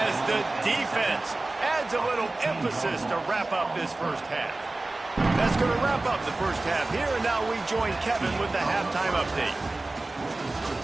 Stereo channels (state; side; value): quieter; left; 3.0 dB